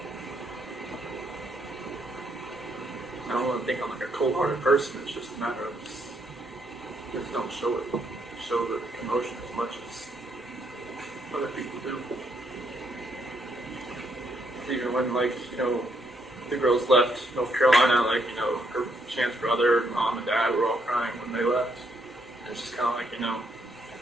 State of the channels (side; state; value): both; normal; correlation 0.74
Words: I don't want to think I'm like a cold-hearted person. It's just a matter of just don't show it. Show the emotion as much as other people do. Even when, like, the girls left North Carolina, like, her Chance brother, mom, and dad were all crying when they left. And it's just kind of like,